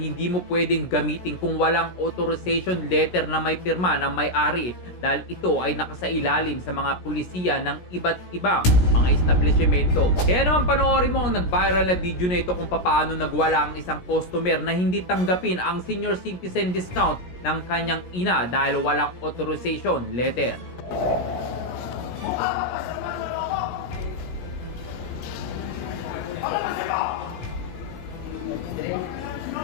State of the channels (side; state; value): right; late; 17 ms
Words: hindi mo pwedeng gamitin kung walang authorization letter na may pirma ng may-ari dahil ito ay nakasailalim sa mga pulisiya ng iba't ibang mga establishmento. Kaya naman panoorin mo ang nag-viral na video na ito kung paano nagwala ang isang customer na hindi tanggapin ang senior citizen discount ng kanyang ina dahil walang authorization letter.